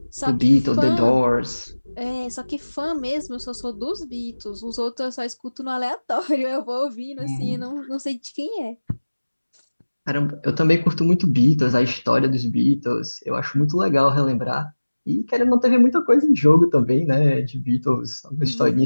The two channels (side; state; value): both; inverted; correlation -1.00